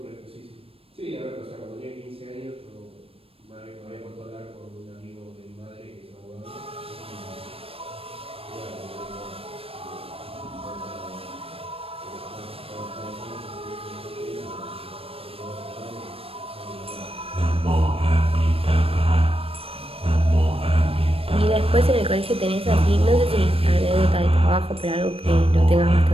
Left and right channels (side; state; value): left; late; 0.28 ms